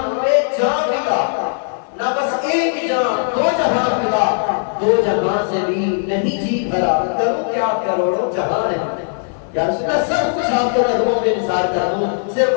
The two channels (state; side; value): silent; right; 64 dB below the other